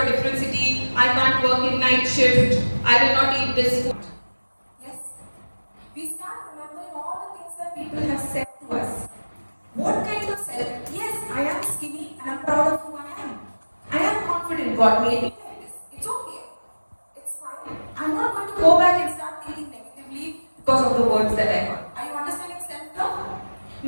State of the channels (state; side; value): inverted; both; correlation -1.00